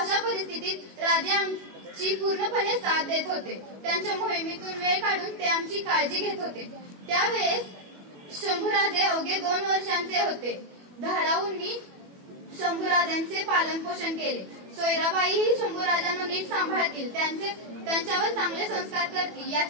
राजे आमची पूर्णपणे साथ देत होते। त्यांच्या मोहिमेतून वेळ काढून ते आमची काळजी घेत होते। त्यावेळेस शंभूराजे अवघे 2 वर्षांचे होते। धाराऊंनी शंभूराजांचे पालन पोषण केले। सोयराबाईही शंभूराजांना नीट सांभाळतील, त्यांच्यावर चांगले संस्कार करतील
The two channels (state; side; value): late; left; 21 ms